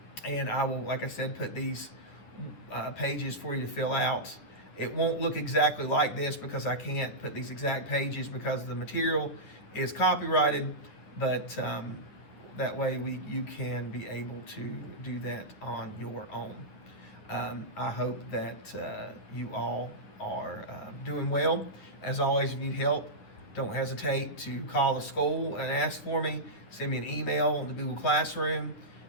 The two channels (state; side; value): late; right; 9.6 ms